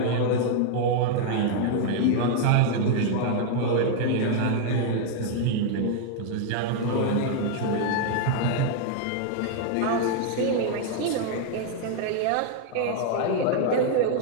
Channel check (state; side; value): different; both; correlation 0.00